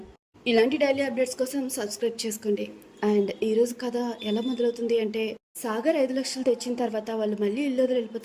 ఇలాంటి డైలీ అప్డేట్స్ కోసం సబ్స్క్రైబ్ చేసుకోండి. అండ్ ఈరోజు కథ ఎలా మొదలవుతుంది అంటే, సాగర్ 5 లక్షలు తెచ్చిన తర్వాత వాళ్ళు మళ్ళీ ఇల్లు వదిలి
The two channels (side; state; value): both; identical; correlation 1.00